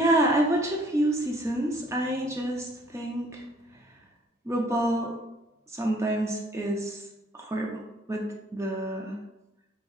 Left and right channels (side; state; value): both; normal; correlation 0.60